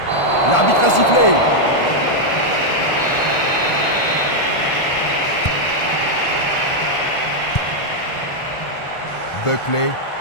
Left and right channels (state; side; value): late; right; 1.4 ms